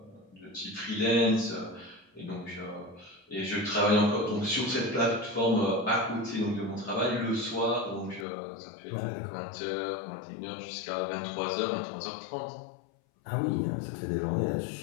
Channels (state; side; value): drops out; right; at 8.2 s